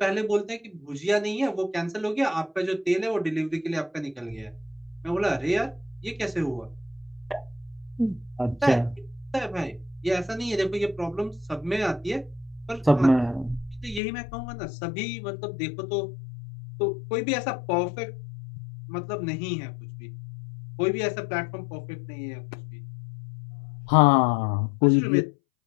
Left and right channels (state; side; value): drops out; right; at 14.0 s